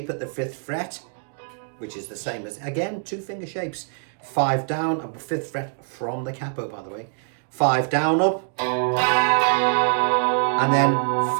at the 5th fret, which is the same as, again, 2-finger shapes. 5 down, up 5th fret from the capo, by the way. 5 down, up, and then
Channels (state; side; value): silent; left; digital silence